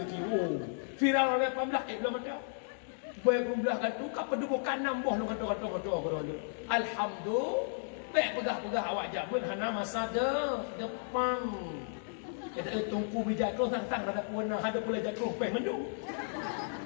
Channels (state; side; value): silent; right; digital silence